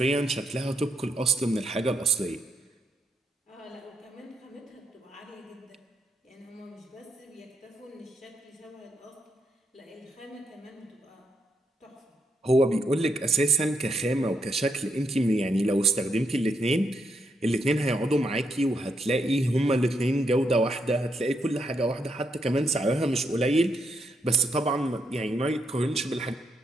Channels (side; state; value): both; normal; correlation 0.78